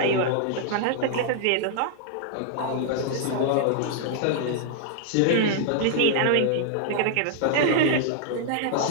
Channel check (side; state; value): both; different; correlation -0.01